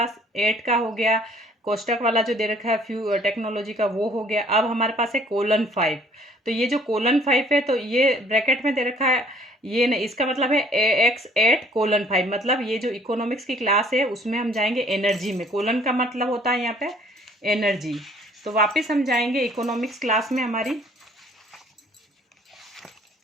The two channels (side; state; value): both; normal; correlation 0.58